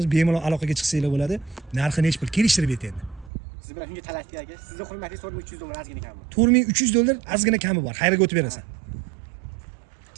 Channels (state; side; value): drops out; left; at 3.3 s